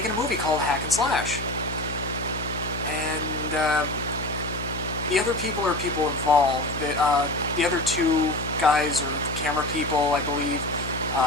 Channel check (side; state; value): left; noise; hum, 9 dB below the sound